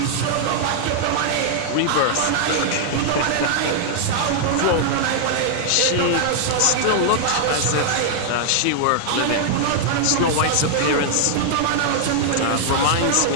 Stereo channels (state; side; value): different; both; correlation -0.01